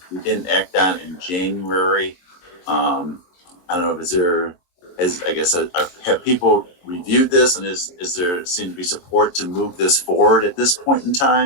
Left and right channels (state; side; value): late; right; 22 ms